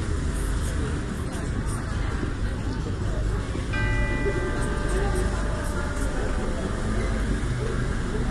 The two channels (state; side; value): identical; both; correlation 1.00